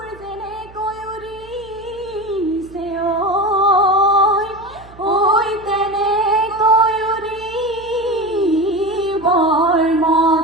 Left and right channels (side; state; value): right; noise; hum, 22 dB below the sound